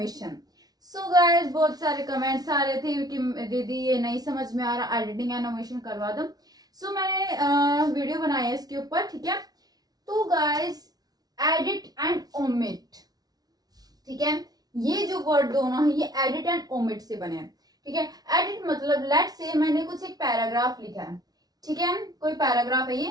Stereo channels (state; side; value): late; left; 0.19 ms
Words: So guys, बहुत सारे comments आ रहे थे कि दीदी ये नहीं समझ में आ रहा, एडिटिंग एंड ओमिशन करवा दो. सो मैंने वीडियो बनाया है इसके ऊपर, ठीक है. तो गाइस, एडिट एंड ओमिट, ठीक है, ये जो वर्ड दोनों है ये एडिट एंड ओमिट से बने हैं, ठीक है. एडिट मतलब लेट से मैंने कुछ एक पैराग्राफ लिखा है, ठीक है, कोई पैराग्राफ है